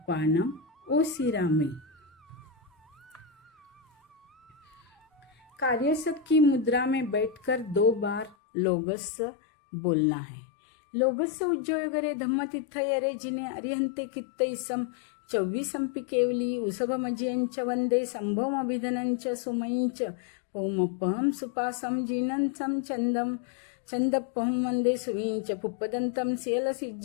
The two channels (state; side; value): drops out; right; at 8.3 s